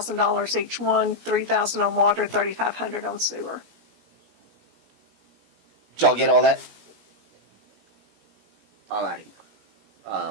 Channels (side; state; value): left; late; 17 ms